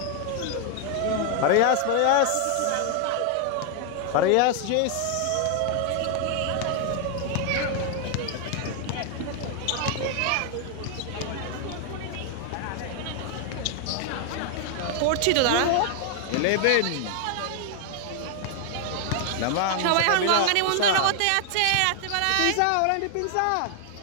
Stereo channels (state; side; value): different; both; correlation 0.00